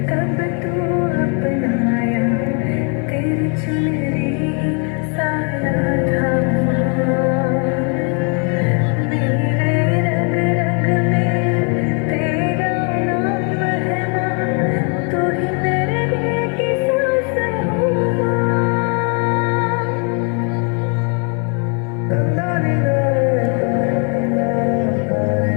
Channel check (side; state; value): right; quieter; 38.2 dB